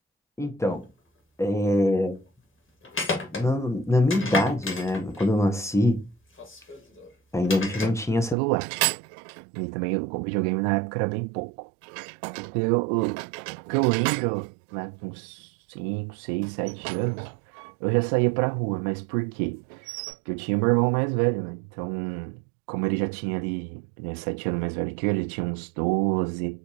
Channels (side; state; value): left; drops out; at 8.3 s